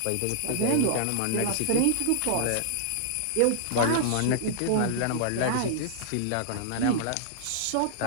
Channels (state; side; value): different; both; correlation -0.01